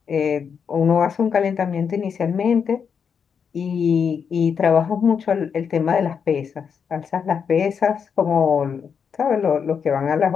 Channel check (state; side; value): quieter; right; 6.7 dB